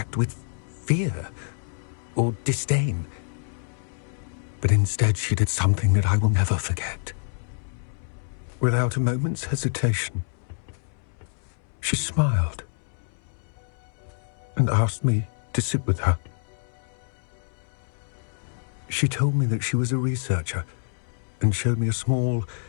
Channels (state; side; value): silent; right; 60 dB below the other